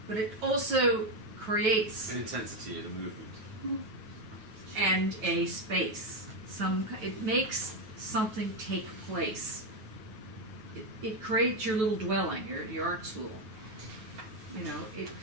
But it also creates An intensity of the movement. and a space. It makes something take place. It creates your little dwelling, your art school.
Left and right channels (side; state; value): left; late; 9.2 ms